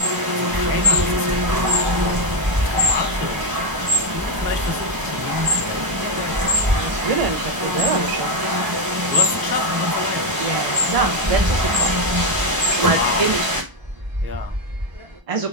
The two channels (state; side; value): late; left; 1.0 ms